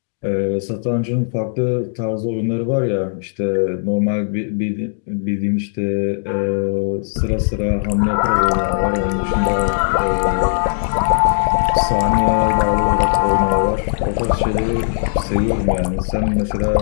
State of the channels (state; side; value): silent; right; digital silence